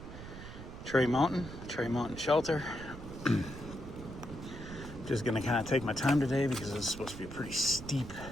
Mountain Shelter. Just gonna kind of take my time today because it's supposed to be a pretty steep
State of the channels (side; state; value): right; noise; rumble, 12 dB below the sound